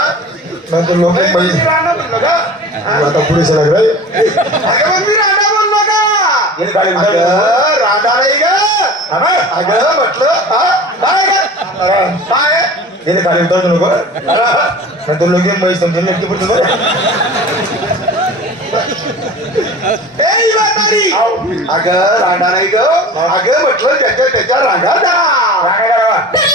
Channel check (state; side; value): normal; both; correlation 0.38